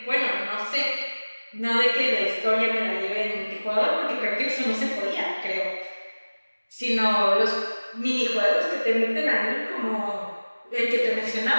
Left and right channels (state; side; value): inverted; both; correlation -1.00